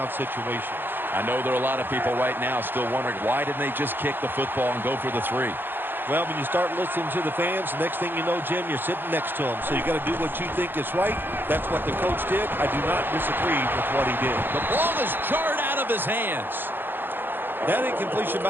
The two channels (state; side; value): late; left; 0.099 ms